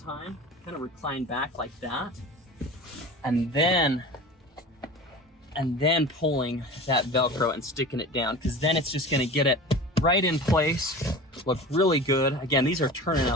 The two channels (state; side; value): normal; both; correlation 0.36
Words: Kind of recline back like that. And then pulling that Velcro and sticking it down, because then it's just gonna get it right in place, look really good. Again, these are turning